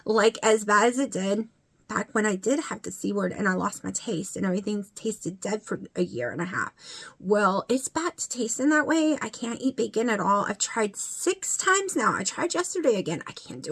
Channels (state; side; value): identical; both; correlation 1.00